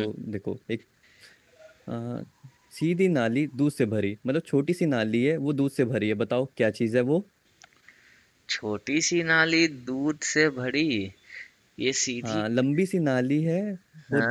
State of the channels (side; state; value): both; identical; correlation 1.00